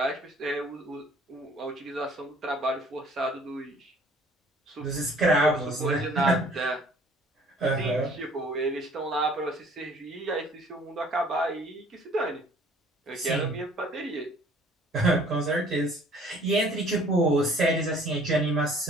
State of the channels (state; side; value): normal; both; correlation 0.55